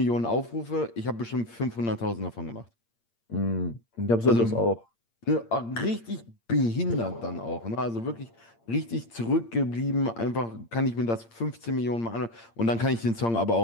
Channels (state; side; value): late; right; 8.7 ms